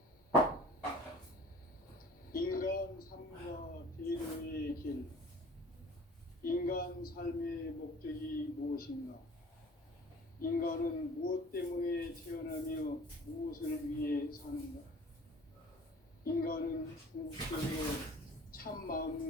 인간 삶과 대로의 길. 인간 삶의 목적이 무엇인가? 인간은 무엇 때문에 태어나며 무엇을 위해 사는가? 인간은 궁극적으로 참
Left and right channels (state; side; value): normal; both; correlation 0.47